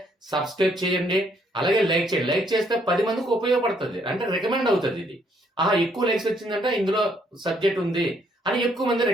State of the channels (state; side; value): normal; both; correlation 0.69